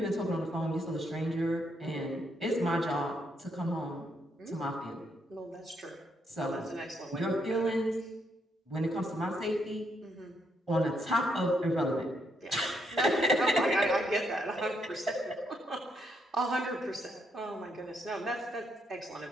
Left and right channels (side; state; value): both; normal; correlation 0.76